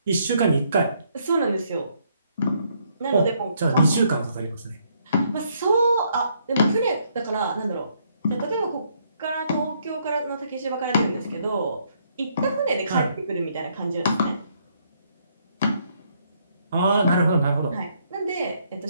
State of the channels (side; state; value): both; inverted; correlation -0.71